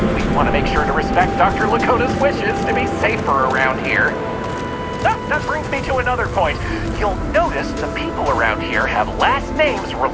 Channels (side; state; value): both; identical; correlation 1.00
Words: We want to make sure to respect Dr. Lakota's wishes to be safer around here. That brings me to another point. You'll notice the people around here have last names